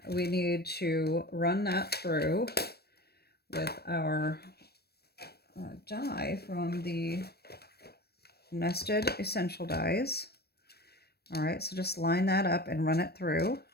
we need to run that through with our die from the Nested Essential Dies. All right, so just line that up and run it through.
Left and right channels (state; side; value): late; right; 0.47 ms